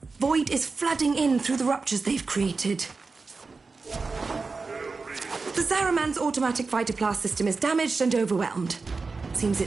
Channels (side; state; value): left; quieter; 4.2 dB